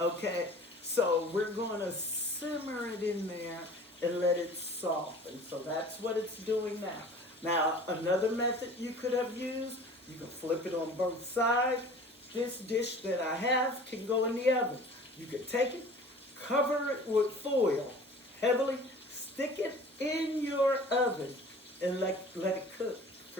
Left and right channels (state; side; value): normal; both; correlation 0.45